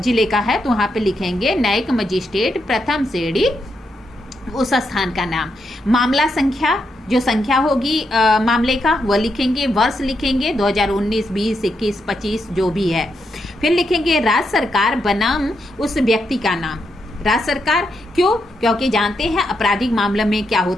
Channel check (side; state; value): both; normal; correlation 0.82